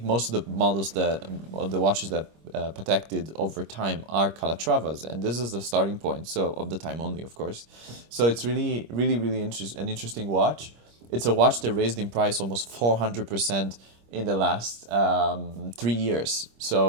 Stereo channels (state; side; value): late; left; 25 ms